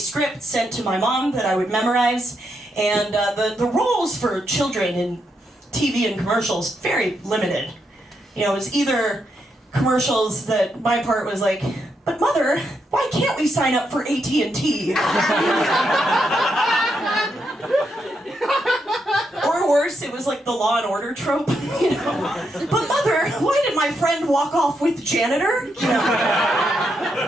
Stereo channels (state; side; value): normal; both; correlation 0.81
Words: sent to my mom that I would memorize, and the roles for children in TV and commercials very limited. You know, it was either commercials that my part was like, but mother, why can't we sign up for AT&T? Or worse, it was like the Law and Order trope, you know. But mother, why did my friend walk off with janitor? You know.